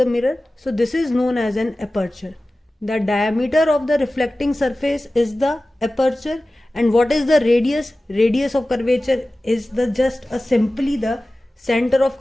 mirror, so this is known as an aperture. The diameter of the reflecting surface is the aperture, and what is the radius? Radius of curvature is the just a simply the center of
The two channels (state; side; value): normal; both; correlation 0.96